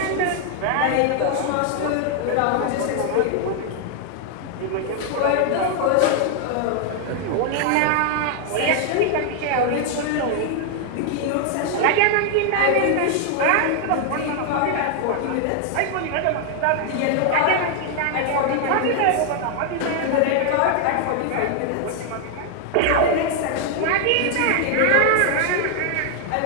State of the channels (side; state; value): both; different; correlation 0.00